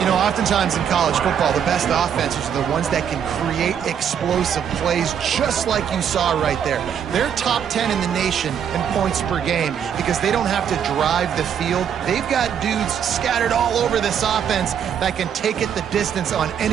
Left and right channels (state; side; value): quieter; left; 8.4 dB